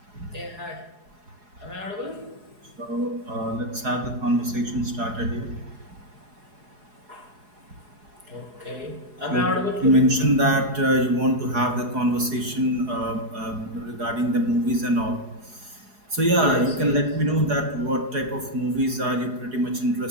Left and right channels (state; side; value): late; left; 4.8 ms